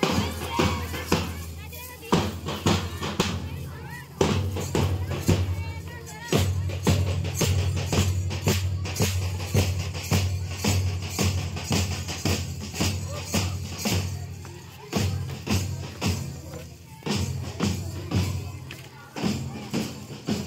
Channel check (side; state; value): both; identical; correlation 1.00